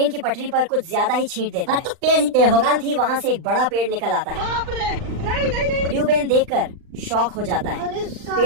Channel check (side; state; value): left; late; 39 ms